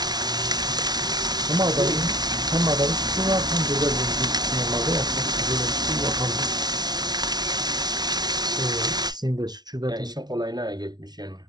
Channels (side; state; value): left; late; 0.19 ms